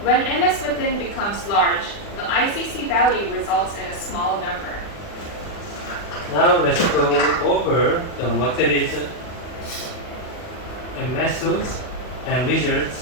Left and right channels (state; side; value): late; right; 40 ms